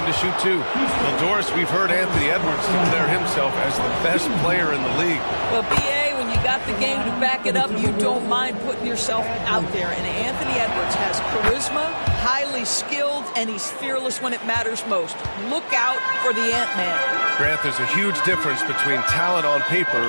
to shoot 2. Well, Doris, we've heard Anthony Edwards declare himself as the best player in the league. Well, B.A., when you got the game to back it up, you don't mind putting yourself out there. And Anthony Edwards has charisma, highly skilled, and he's fearless when it matters most. Look out for the Ant-Man. Grant, there's a huge difference between talent on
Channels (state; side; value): inverted; both; correlation -1.00